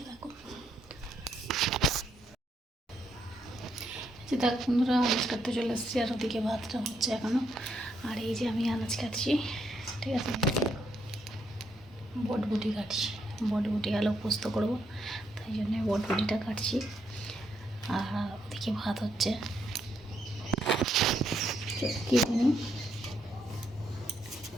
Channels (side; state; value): both; normal; correlation 0.76